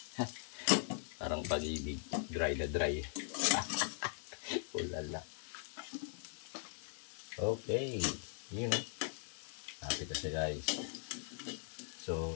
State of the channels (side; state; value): right; silent; digital silence